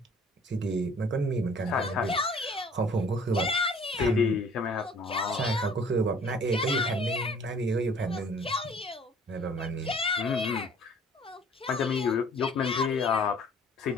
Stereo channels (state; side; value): normal; both; correlation 0.54